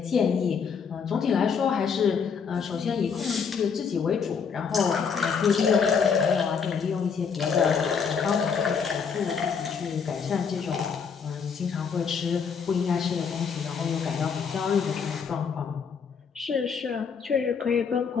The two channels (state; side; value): quieter; right; 6.3 dB